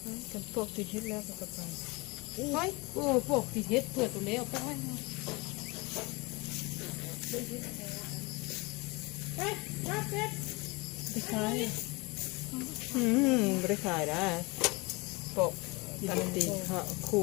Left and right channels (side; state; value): right; quieter; 26.0 dB